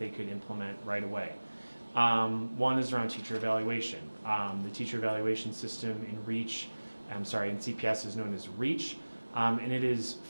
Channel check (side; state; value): both; inverted; correlation -1.00